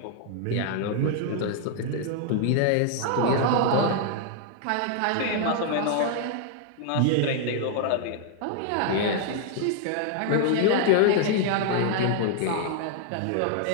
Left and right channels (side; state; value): both; different; correlation -0.01